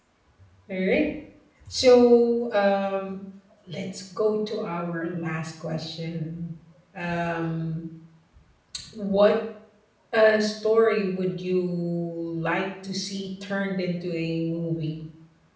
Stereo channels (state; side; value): identical; both; correlation 1.00